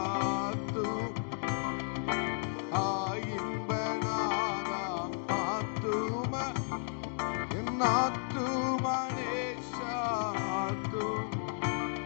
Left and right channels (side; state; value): right; silent; 55 dB below the other